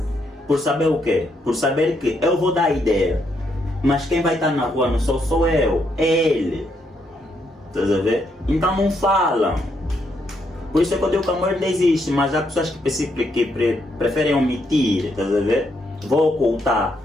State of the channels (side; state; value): both; normal; correlation 0.76